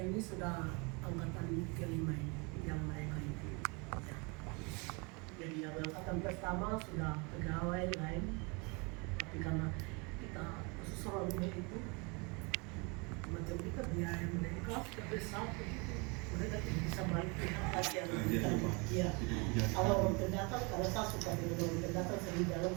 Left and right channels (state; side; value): quieter; left; 30.0 dB